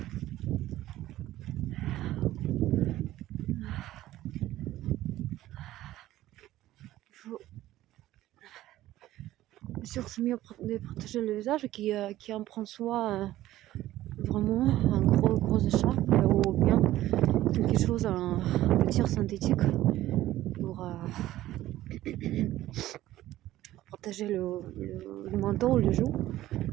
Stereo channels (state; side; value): quieter; left; 14.8 dB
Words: Il faut bien sûr c'est mieux de protéger le visage qui en prend soin vraiment un gros écharpe ou bien quelque chose, un tir synthétique pour protéger le menton ou le joue.